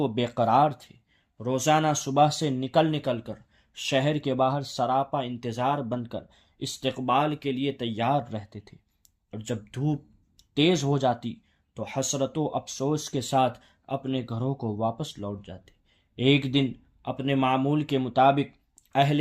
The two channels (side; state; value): both; identical; correlation 1.00